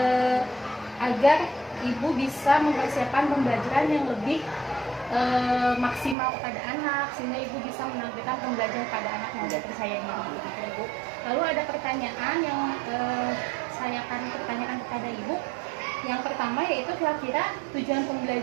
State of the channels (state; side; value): drops out; left; at 6.2 s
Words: agar Ibu bisa mempersiapkan pembelajaran yang lebih maksimal kepada anak, sehingga Ibu bisa menampilkan pembelajaran pada anak yang lebih percaya diri gitu, Ibu. Lalu ada pertanyaan yang saya akan pertanyakan kepada Ibu. Yang pertama yaitu kira-kira tujuan